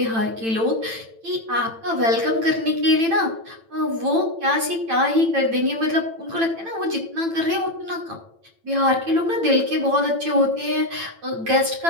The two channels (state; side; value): late; left; 8.9 ms